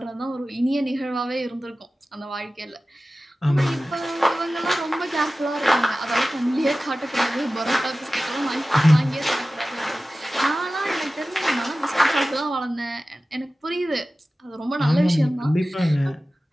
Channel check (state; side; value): normal; both; correlation 0.96